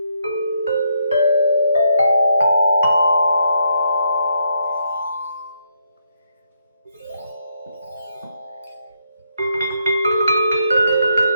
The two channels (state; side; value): inverted; both; correlation -0.76